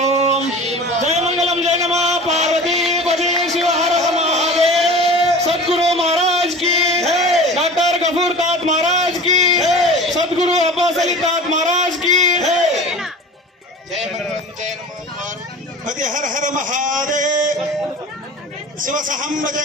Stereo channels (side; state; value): both; normal; correlation 0.38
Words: ಜಯ ಮಂಗಲಂ ಜಯ ನಮಃ ಪಾರ್ವತಿ ಪತಿ ಶಿವ ಹರ ಮಹಾದೇವ್. सदगुरु महाराज की डॉक्टर गफूर तात महाराज की सदगुरु अब्बास अली तात महाराज की ಜಯ ಮಂಗಲಂ ಜಯ ನಮಃ ಪತಿ ಹರ ಹರ ಮಹಾದೇವ್. ಶಿವ ಸಹಂಬ